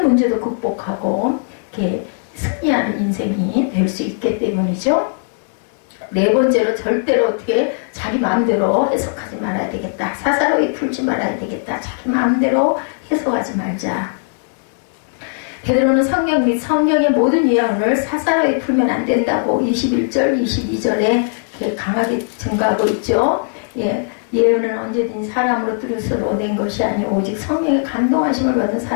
문제도 극복하고 이렇게 승리하는 인생이 될 수 있기 때문이죠. 네 번째로 절대로 어떻게 자기 마음대로 해석하지 말아야 되겠다. 사사로이 풀지 말아야 되겠다. 자기 마음대로 해석하지 말자. 베드로는 성경 및 성경의 모든 예언을 사사로이 풀면 안 된다고 21절, 22절에 강하게 증거하고 있죠. 예언은 언제든지 사람으로 뜻으로 낸 것이 아니오 오직 성령의 감동하심을 받은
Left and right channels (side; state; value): right; silent; digital silence